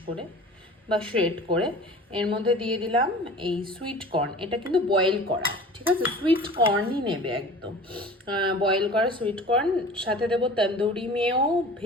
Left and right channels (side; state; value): both; normal; correlation 0.41